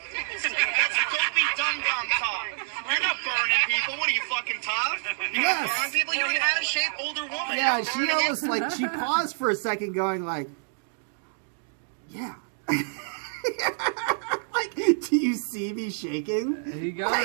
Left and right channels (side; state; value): left; silent; digital silence